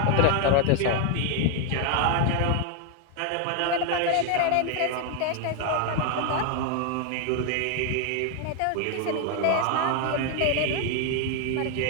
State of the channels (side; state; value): both; different; correlation 0.00